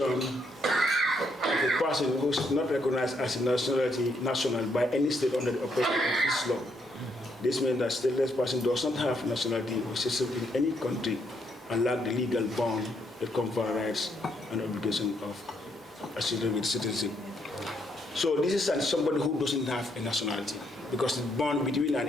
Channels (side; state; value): both; normal; correlation 0.75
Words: of a person who is not recognized as a national by any state under the operation of this law. This means that stateless person does not have nationality or citizenship in any country and lack the legal bond that confer rights and obligation of associated with citizenship. So this is somebody who doesn't have a nationality, because the bond between an